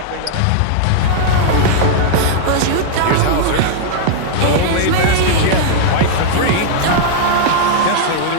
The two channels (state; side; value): different; both; correlation -0.01